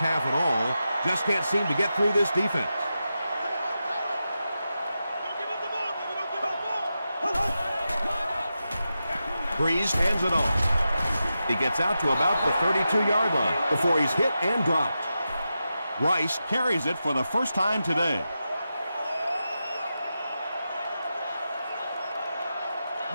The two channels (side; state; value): both; inverted; correlation -0.90